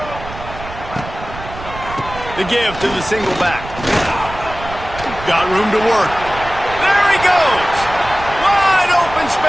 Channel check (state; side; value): noise; right; rumble, 12 dB below the sound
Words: The give to the single back. Got room to work. There he goes. Wide open